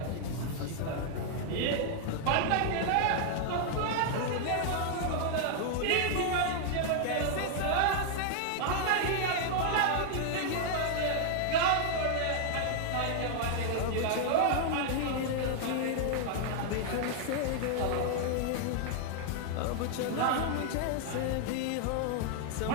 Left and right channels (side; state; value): both; different; correlation 0.00